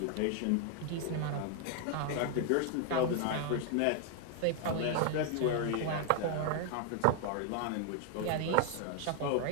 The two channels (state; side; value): different; both; correlation 0.00